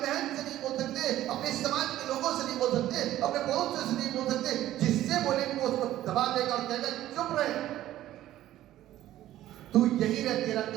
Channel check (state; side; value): quieter; left; 13.7 dB